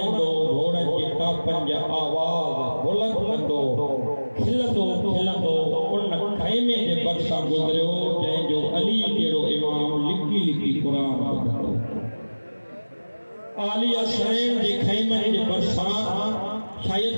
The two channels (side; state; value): both; inverted; correlation -1.00